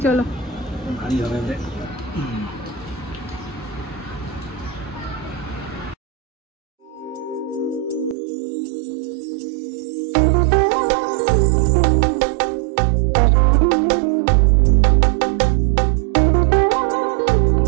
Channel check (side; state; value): left; drops out; at 8.2 s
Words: চলো। ভারী হবে রে।